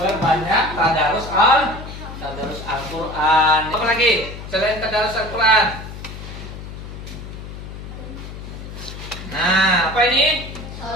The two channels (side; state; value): left; noise; hum, 11 dB below the sound